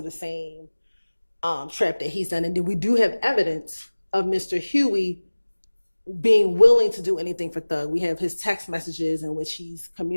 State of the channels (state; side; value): inverted; both; correlation -1.00